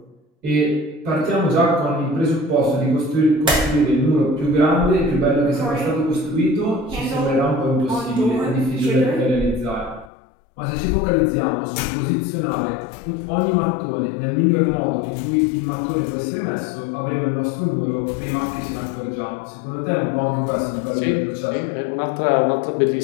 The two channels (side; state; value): right; drops out; at 10.1 s